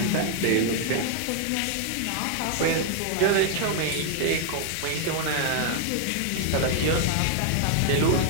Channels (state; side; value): different; both; correlation 0.00